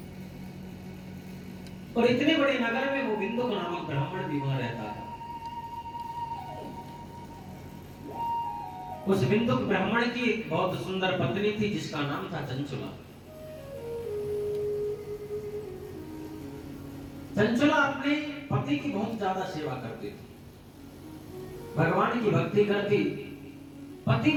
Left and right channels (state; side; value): identical; both; correlation 1.00